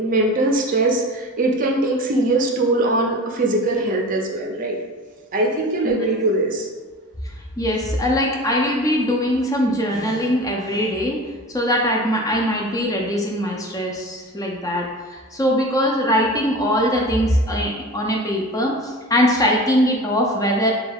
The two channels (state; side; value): normal; both; correlation 0.35